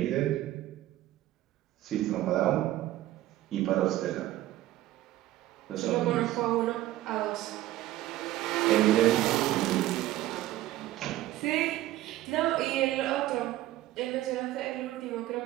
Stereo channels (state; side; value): quieter; left; 15.0 dB